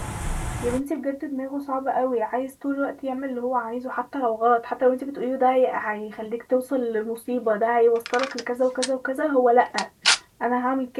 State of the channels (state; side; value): identical; both; correlation 1.00